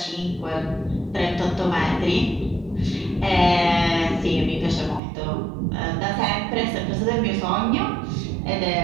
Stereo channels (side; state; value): left; drops out; at 5.0 s